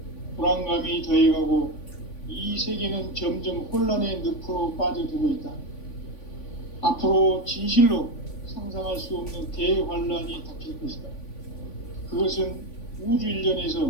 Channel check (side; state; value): right; late; 3.5 ms